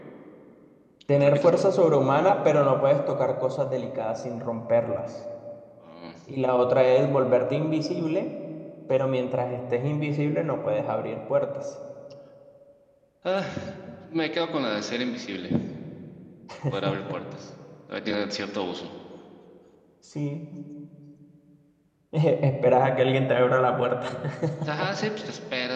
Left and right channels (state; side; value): identical; both; correlation 1.00